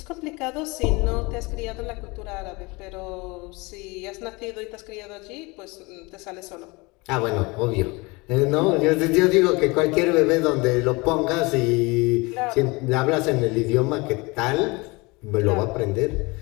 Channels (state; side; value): quieter; right; 25.5 dB